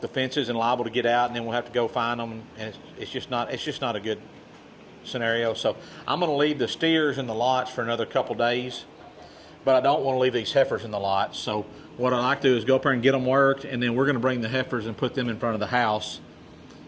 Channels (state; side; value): identical; both; correlation 1.00